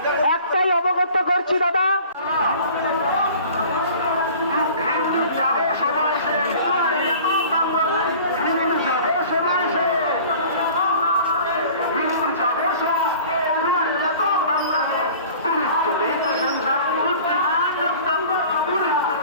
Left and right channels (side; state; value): both; inverted; correlation -0.45